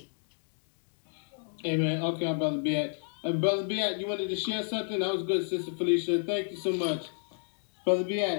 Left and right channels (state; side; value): silent; right; 56 dB below the other